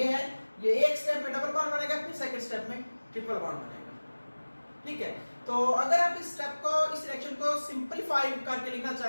है, ये एक स्टेप में डबल बॉन्ड बनेगा, फिर सेकंड स्टेप में ट्रिपल बॉन्ड बनेगा, ठीक है। तो अगर आप इस स्टेप को, इस रिएक्शन को सिंपलीफाई करके लिखना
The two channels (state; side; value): inverted; both; correlation -1.00